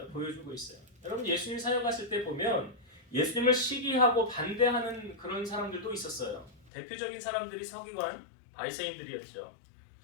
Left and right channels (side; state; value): right; drops out; at 6.7 s